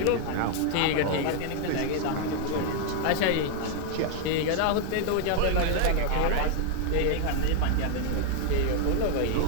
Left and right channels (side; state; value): both; different; correlation 0.00